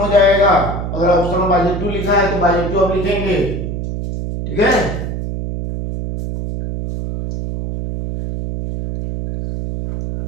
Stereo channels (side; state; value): right; noise; hum, 5 dB below the sound